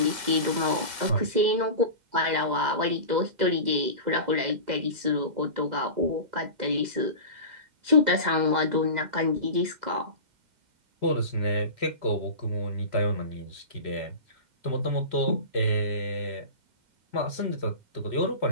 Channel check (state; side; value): late; left; 2.0 ms